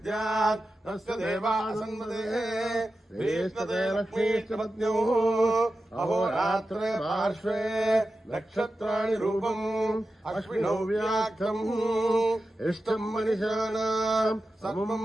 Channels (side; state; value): both; normal; correlation 0.92